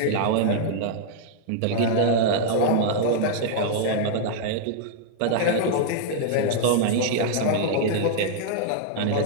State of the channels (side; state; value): both; different; correlation -0.01